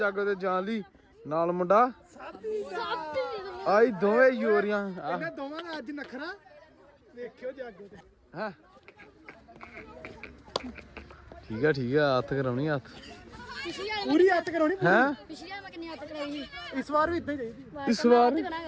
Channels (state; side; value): identical; both; correlation 1.00